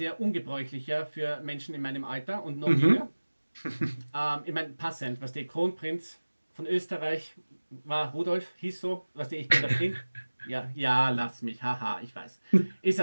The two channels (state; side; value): inverted; both; correlation -1.00